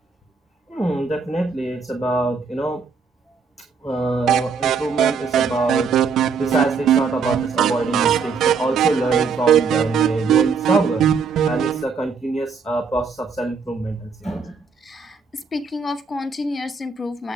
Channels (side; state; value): left; quieter; 5.4 dB